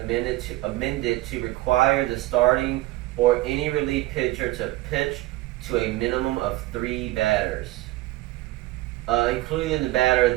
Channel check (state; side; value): quieter; left; 17.8 dB